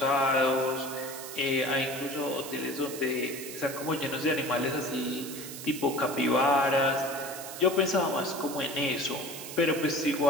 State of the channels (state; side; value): noise; right; hiss, 11 dB below the sound